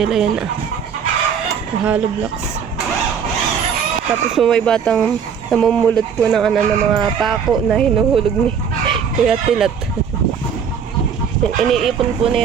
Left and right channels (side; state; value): left; quieter; 7.1 dB